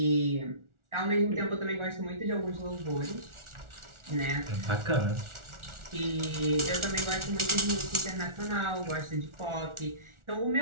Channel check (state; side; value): late; left; 1.4 ms